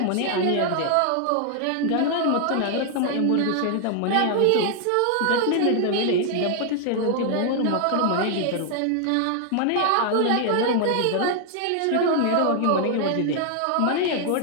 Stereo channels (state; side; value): different; both; correlation 0.00